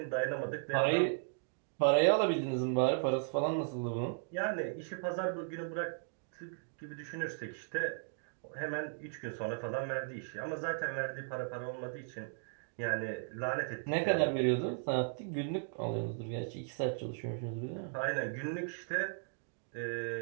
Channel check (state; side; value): silent; left; digital silence